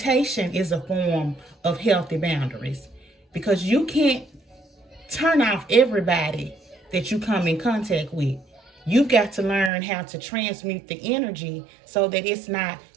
is a form of healthy boundaries, because you can't turn off everybody that you come in contact with. You've got to learn how to transmute the energy so that it's not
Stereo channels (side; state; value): left; drops out; at 9.7 s